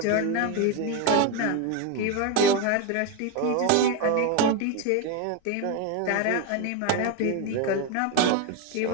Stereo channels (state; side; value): different; both; correlation 0.02